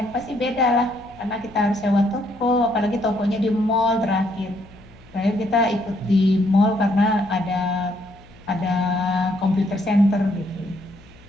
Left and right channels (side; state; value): left; noise; hum, 25 dB below the sound